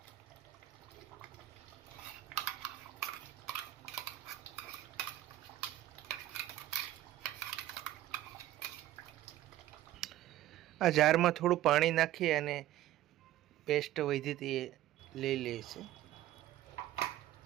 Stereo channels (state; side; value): quieter; left; 14.1 dB